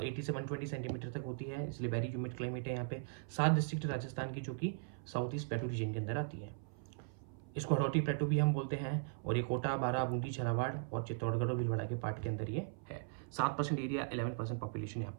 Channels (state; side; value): silent; left; 52 dB below the other